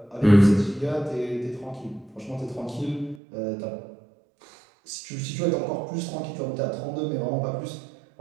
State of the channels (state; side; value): drops out; left; at 3.2 s